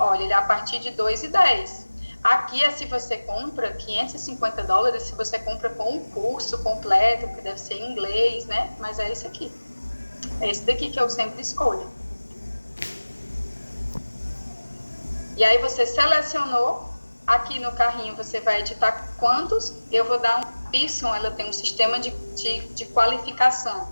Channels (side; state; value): both; inverted; correlation -1.00